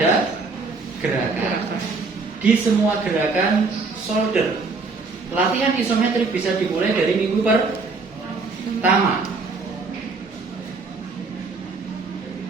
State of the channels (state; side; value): quieter; left; 4.1 dB